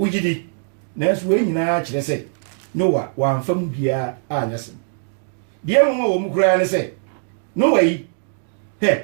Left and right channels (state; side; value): silent; left; digital silence